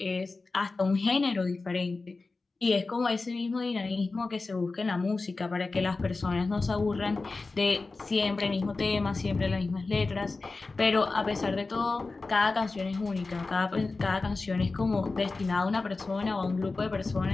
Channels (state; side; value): quieter; right; 3.7 dB